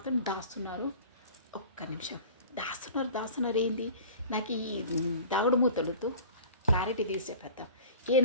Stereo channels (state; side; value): inverted; both; correlation -0.43